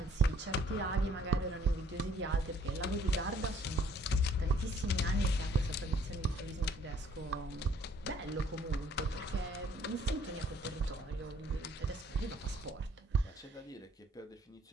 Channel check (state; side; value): normal; both; correlation 0.62